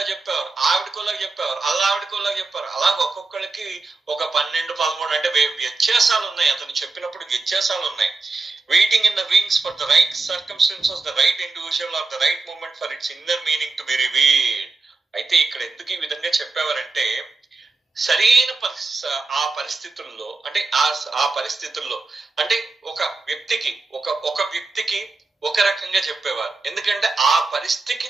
చెప్పేవారు, ఆవిడకోలా చెప్పేవారు, ఆవిడకోలా చెప్పారు. అలా ఒక్కొక్కరికి ఒక 12-13 అంటే వ్యత్యాసాలు ఉన్నాయి. అతను చెప్పినప్పుడు వ్యత్యాసాలు ఉన్నాయి. Waiting in the wings for the right circumstances, the right individual or the right moment for its inner meaning to be revealed. అయితే ఇక్కడ ఎందుకు ఈ విధంగా చెప్పేవారంటే సరైన ఆ పరిస్థితుల్లో అంటే ఆ పరిస్థితుల్లో అంటే ఒక వ్యక్తికి ఒక రకంగా చెప్పేవారు. ఎందుకంటే ఆ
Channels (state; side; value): quieter; left; 3.6 dB